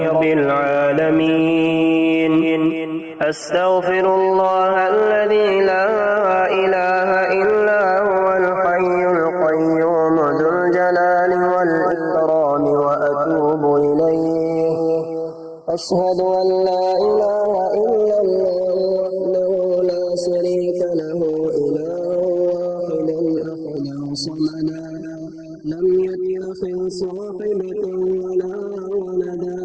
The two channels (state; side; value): identical; both; correlation 1.00